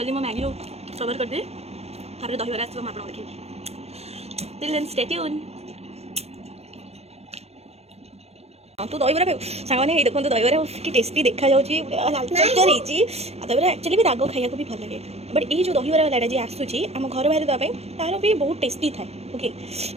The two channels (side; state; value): left; late; 0.30 ms